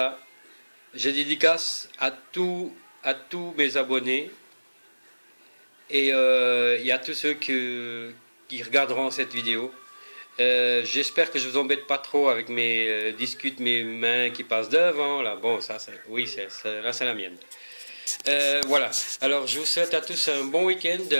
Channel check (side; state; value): both; inverted; correlation -1.00